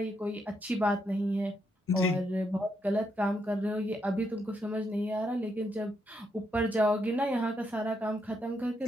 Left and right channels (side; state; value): both; normal; correlation 0.79